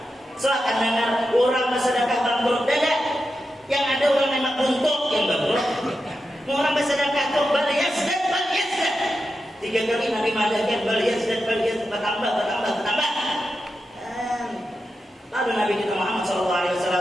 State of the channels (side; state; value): both; normal; correlation 0.89